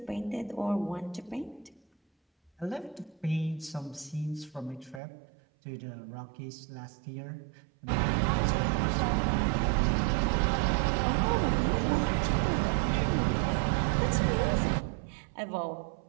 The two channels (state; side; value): drops out; left; at 5.0 s